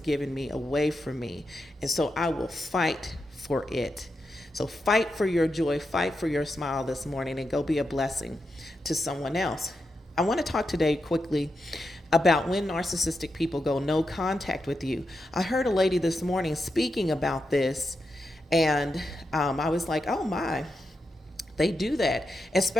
me away from me. And so I will fight for it. So fight for your joy, fight for your smile this morning, and go be a blessing to someone else. I want to talk today quickly about when narcissistic people go no contact with you. I heard a lady this morning speaking about this, and I was like, oh my. They do that,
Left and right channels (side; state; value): both; normal; correlation 0.87